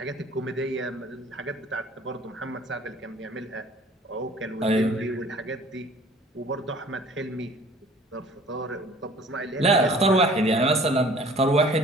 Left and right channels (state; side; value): normal; both; correlation 0.50